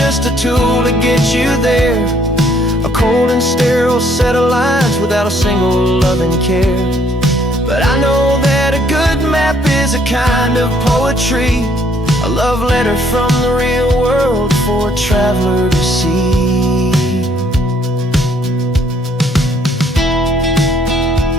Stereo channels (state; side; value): normal; both; correlation 0.65